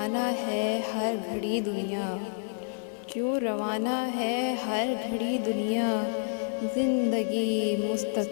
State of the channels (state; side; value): silent; right; 59 dB below the other